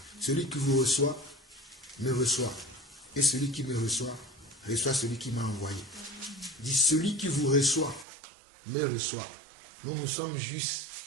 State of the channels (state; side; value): drops out; left; at 8.1 s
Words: Celui qui vous reçoit, me reçoit. Et celui qui me reçoit celui qui m'a envoyé. Il dit, celui qui vous reçoit, me reçoit. Nous sommes juste